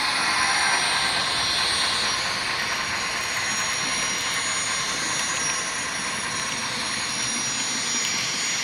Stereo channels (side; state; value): both; identical; correlation 1.00